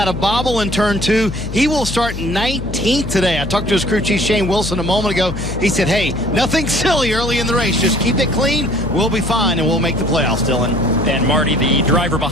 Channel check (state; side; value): noise; left; hum, 8 dB below the sound